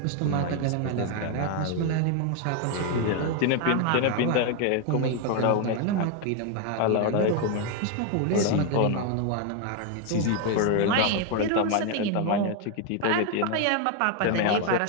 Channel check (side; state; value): both; different; correlation 0.01